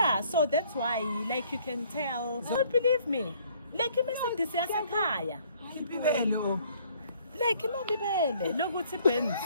so that's why like you can tell don't believe me like iMercedes yasekhaya like imabibele lokuthi Benz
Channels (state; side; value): inverted; both; correlation -0.61